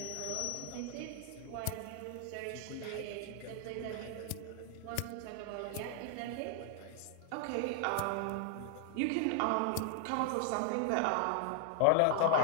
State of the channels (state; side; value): different; both; correlation 0.00